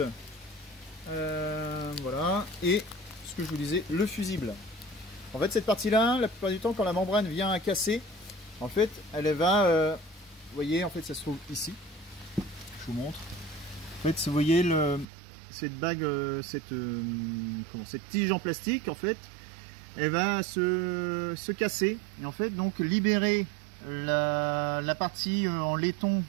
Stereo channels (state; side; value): drops out; left; at 15.1 s